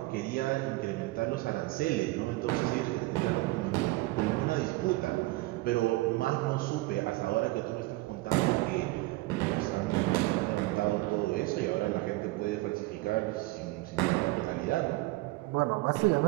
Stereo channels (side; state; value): left; quieter; 20.4 dB